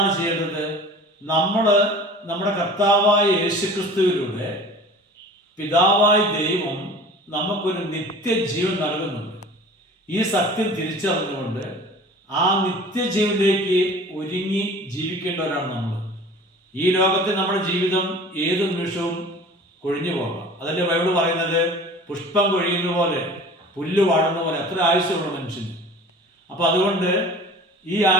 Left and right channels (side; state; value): both; normal; correlation 0.42